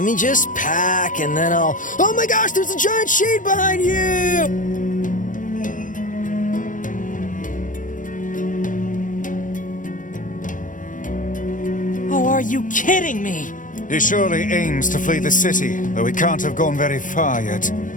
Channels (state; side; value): late; right; 0.38 ms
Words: me just pack and then I'll... Oh my gosh, there's a giant shade behind you! Oh, are you kidding me? He surely aims to flee the city, though he can't have gone very far yet.